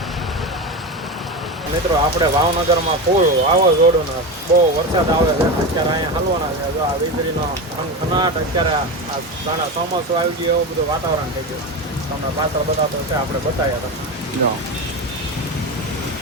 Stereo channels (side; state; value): both; normal; correlation 0.21